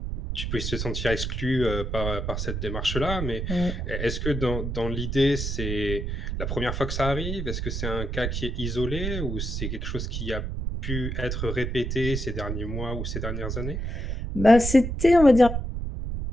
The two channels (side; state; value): right; noise; rumble, 3 dB below the sound